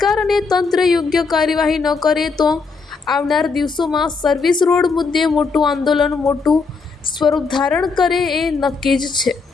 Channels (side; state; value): right; quieter; 4.6 dB